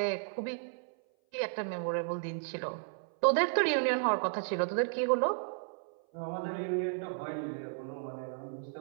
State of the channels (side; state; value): left; silent; 55 dB below the other